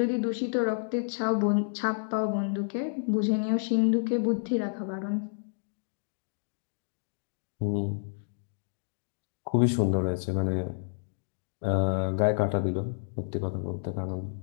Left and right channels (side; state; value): right; silent; digital silence